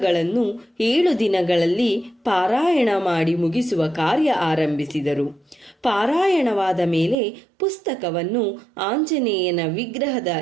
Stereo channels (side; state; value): left; drops out; at 7.2 s